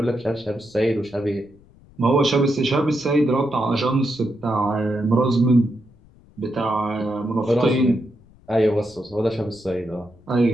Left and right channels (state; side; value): noise; left; rumble, 27 dB below the sound